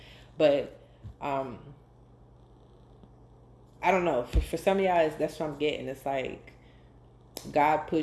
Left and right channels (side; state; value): both; identical; correlation 1.00